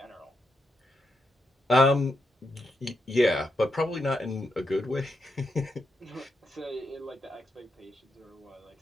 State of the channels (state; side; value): normal; both; correlation 0.83